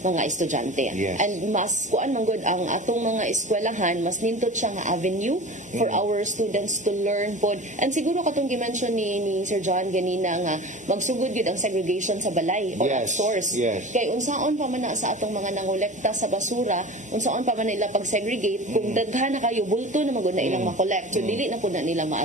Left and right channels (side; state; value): both; normal; correlation 0.35